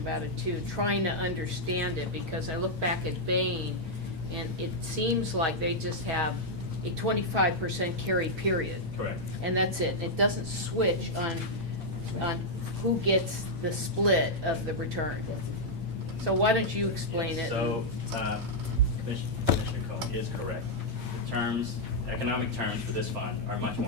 it too, trying to understand it, because I look back at Bain, and it seems like they just have a 25% carry period. correct. And that's it. It doesn't switch on who gets the split of the return. So why don't you explain it? So, Commissioner Cohen is correct. The terms, economic terms for this fund are much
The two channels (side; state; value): left; late; 8.7 ms